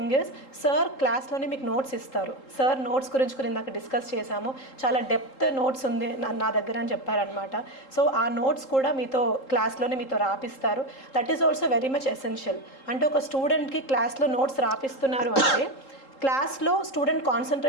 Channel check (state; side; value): late; right; 3.8 ms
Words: is sir క్లాస్లోనే మీకు నోట్స్ ఇస్తారు. సార్ నోట్స్ గురించి కూడా ఇందాక డిస్కస్ చేశాము, చాలా డెప్త్ నోట్స్ ఉంది నా దగ్గర అని చెప్పారనమాట. సో ఆ నోట్స్ కూడా మీతో క్లాస్లోనే మీతో రాపిస్తారు. That is also very much essential. అంటే ఒక స్టూడెంట్కి క్లాస్లో నోట్స్ రాపిస్తున్నారు అంటే క్లాస్లో స్టూడెంట్